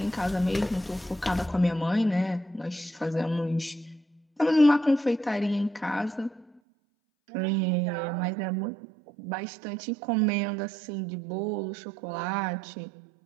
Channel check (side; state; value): left; drops out; at 6.6 s